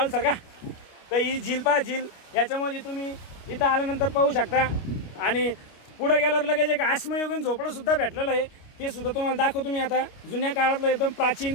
सर का, तर ही झील पहा झील. याच्यामध्ये तुम्ही इथं आल्यानंतर पाहू शकता. आणि पुढे गेल्यावर लगेच एक आश्मयुगीन झोपडं सुद्धा भेटलेलं आहे. ते सुद्धा तुम्हाला दाखवतो मी आता. जुन्या काळातलं एकदम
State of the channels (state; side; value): late; right; 29 ms